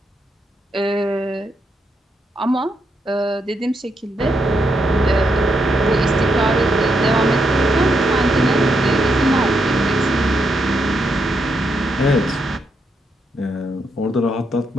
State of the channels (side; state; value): both; normal; correlation 0.80